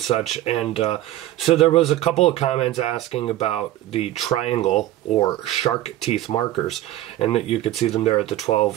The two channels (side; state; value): left; quieter; 14.3 dB